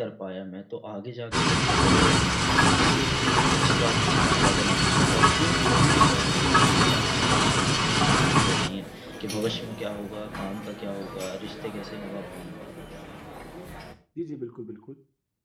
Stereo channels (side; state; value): both; identical; correlation 1.00